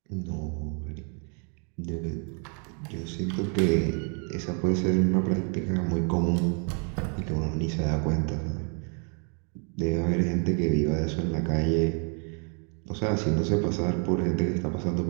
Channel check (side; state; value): left; quieter; 39.4 dB